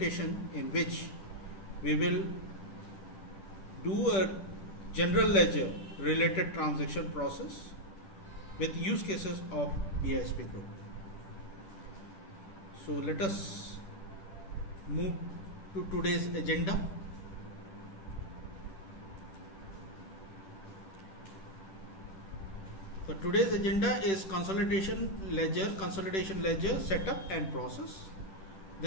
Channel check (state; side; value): late; right; 10 ms